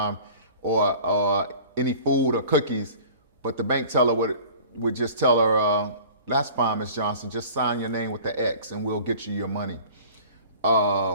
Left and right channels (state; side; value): inverted; both; correlation -0.45